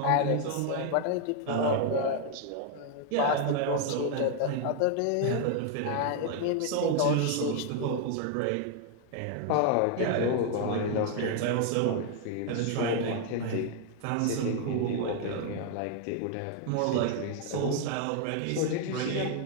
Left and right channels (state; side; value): different; both; correlation 0.00